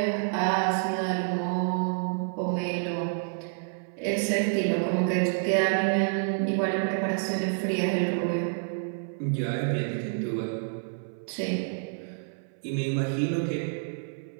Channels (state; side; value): silent; left; 59 dB below the other